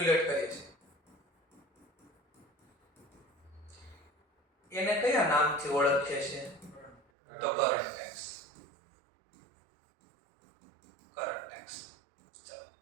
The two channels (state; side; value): drops out; left; at 7.0 s